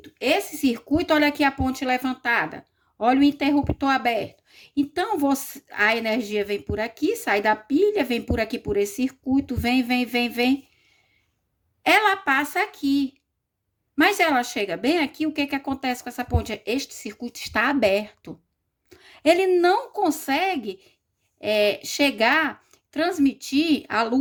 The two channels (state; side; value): identical; both; correlation 1.00